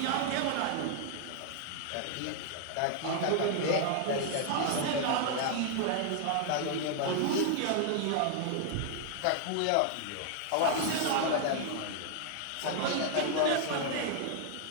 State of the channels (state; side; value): different; both; correlation 0.00